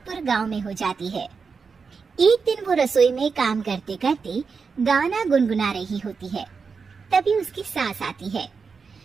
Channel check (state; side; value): quieter; left; 5.2 dB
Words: गांव में हो जाती है। एक दिन वो रसोई में काम करते करते गाना गुनगुना रही होती है। तभी उसकी सास आती है।